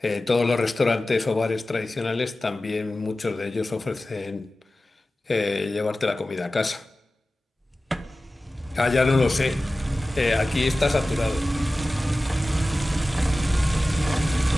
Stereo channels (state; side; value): normal; both; correlation 0.96